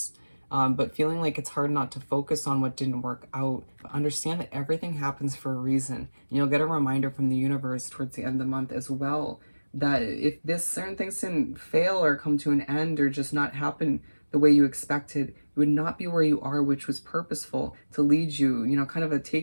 But feeling like it's hard not to focus on what didn't work out, but understand that everything happens for a reason. And you'll get a reminder from the universe towards the end of the month as well, that if this certain things didn't fail or come to an end or just not happen the way you expected, you would not be where you are, which was purposeful to lead you, you know, kind of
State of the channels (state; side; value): inverted; both; correlation -1.00